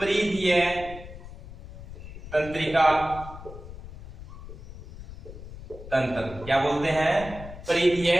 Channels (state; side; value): noise; left; rumble, 14 dB below the sound